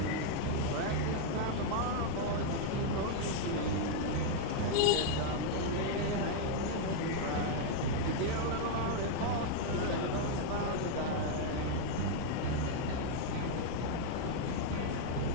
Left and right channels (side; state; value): both; different; correlation 0.00